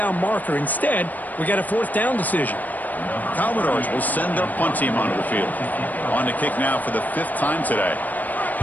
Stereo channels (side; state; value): right; late; 0.082 ms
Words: marker. Instead, we got a fourth down decision. Commodores will send their punt team onto the field. On to kick now for the 5th time today.